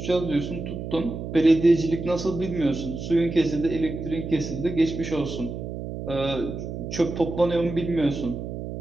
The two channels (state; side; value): noise; right; hum, 7 dB below the sound